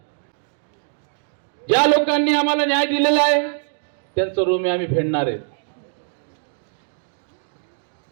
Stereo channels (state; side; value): silent; left; 56 dB below the other